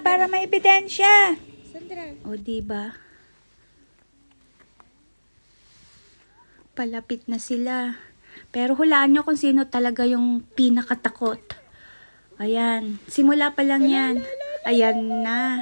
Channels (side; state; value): both; inverted; correlation -1.00